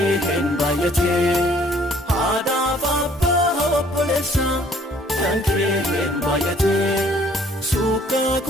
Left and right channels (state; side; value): normal; both; correlation 0.59